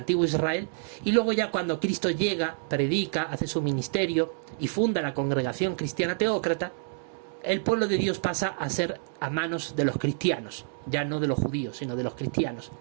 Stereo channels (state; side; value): silent; left; digital silence